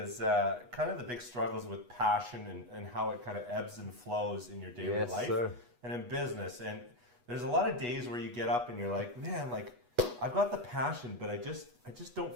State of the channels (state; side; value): late; left; 8.2 ms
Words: kind of the big struggles with passion and how it kind of ebbs and flows in your daily life and in business. And there's a lot of days where you get up and you're like, man, like I've got the passion, but I just